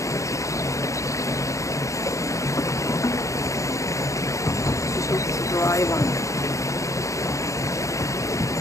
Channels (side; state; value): right; late; 0.15 ms